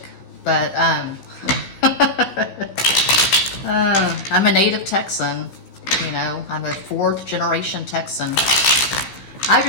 but I'm a native Texan. You know, I'm a 4th generation Texan. I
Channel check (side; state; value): right; late; 15 ms